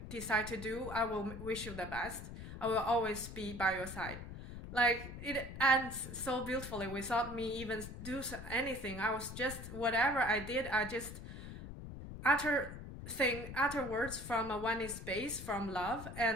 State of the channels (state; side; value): noise; left; rumble, 10 dB below the sound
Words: decide to do, I will wish you the best. I will always be by your side. Like, it ends so beautifully without me even do anything. I was just, whatever I did, I just utter words from a oneness space, from love,